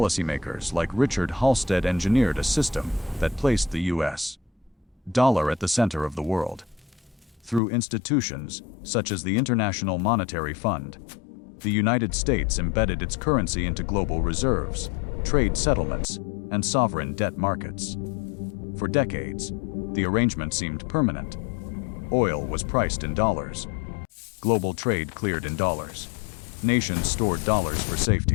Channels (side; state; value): right; drops out; at 7.6 s